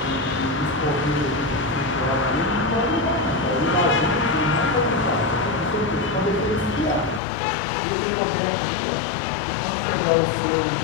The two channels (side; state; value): right; drops out; at 7.2 s